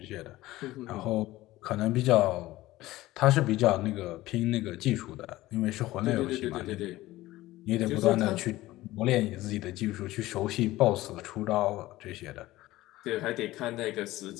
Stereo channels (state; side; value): quieter; right; 17.2 dB